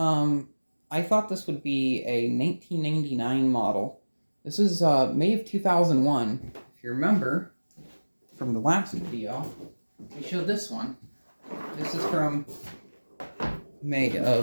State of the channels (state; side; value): inverted; both; correlation -1.00